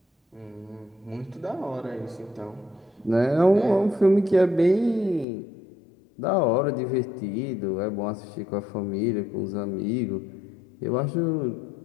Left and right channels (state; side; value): drops out; right; at 5.2 s